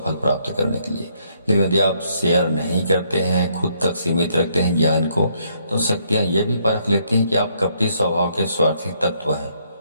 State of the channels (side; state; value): both; inverted; correlation -0.71